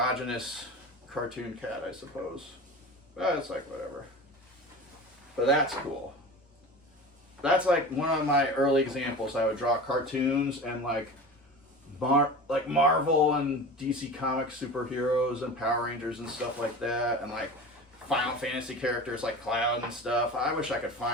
cartoon cat, I suppose. But it's like, whatever. But that's cool. That's like one of my early examples. I would draw cartoons and like Marvel and DC Comics superheroes and Power Rangers and stuff like that, and like Final Fantasy characters like Cloud and stuff. I wish I could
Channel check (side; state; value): both; normal; correlation 0.33